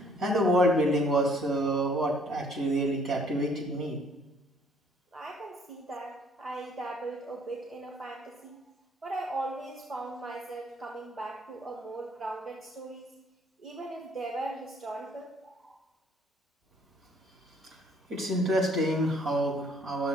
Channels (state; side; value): normal; both; correlation 0.62